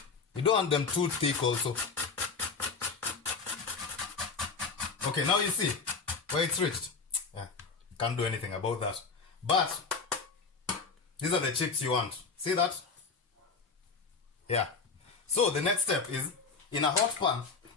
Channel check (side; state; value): right; quieter; 4.9 dB